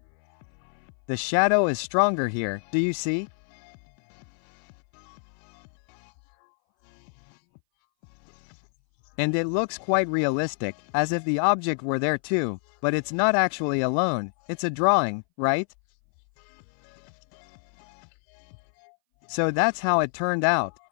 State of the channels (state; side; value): silent; right; 61 dB below the other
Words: The shadow is stronger here, do you see? And it looks quite realistic, as if the object were there too, but it's not actually alone, it's a drawing, right? So that's how it turned out.